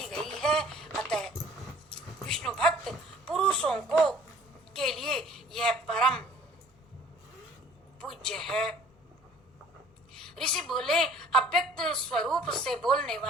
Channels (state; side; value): normal; both; correlation 0.53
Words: गई है। अतः विष्णु भक्त पुरुषों को के लिए यह परम पूज्य है। ऋषि बोले, अव्यक्त स्वरूप से बोलने